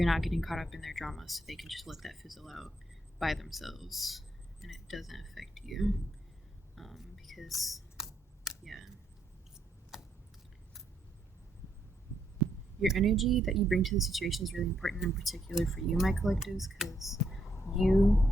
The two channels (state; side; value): normal; both; correlation 0.76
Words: not getting caught up in their drama, so they can just let that fizzle out by themselves and it doesn't affect you. Because your energy that you bring to the situation is really important, in particular for you, my collectives, because